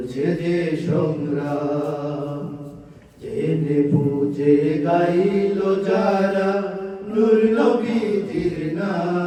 যে সংগ্রাম। জেনে বুঝে গাইল যারা নূর নবীজির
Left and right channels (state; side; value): identical; both; correlation 1.00